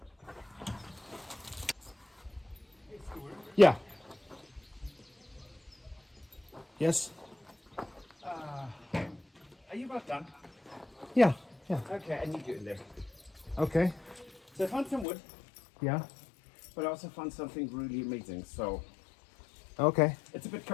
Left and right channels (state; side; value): drops out; right; at 15.1 s